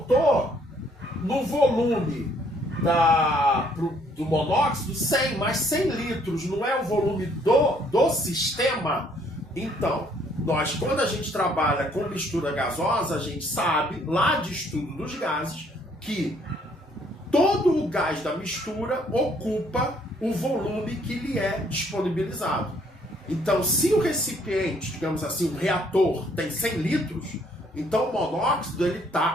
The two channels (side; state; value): both; normal; correlation 0.65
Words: no volume do monóxido 100, mas 100 litros não é o volume do sistema? Então, quando a gente trabalha com mistura gasosa, a gente sabe, lá de estudo dos gases, que todo o gás da mistura ocupa o volume que lhe é disponibilizado. Então, se o recipiente, digamos assim, o reator, tem 100 litros, então o monóxido